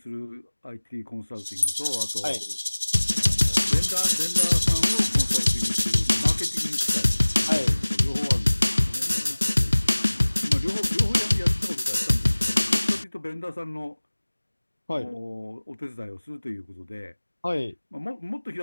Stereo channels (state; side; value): inverted; both; correlation -1.00